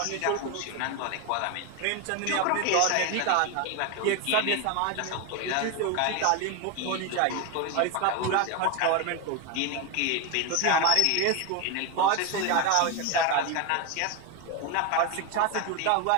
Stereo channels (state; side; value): different; both; correlation 0.02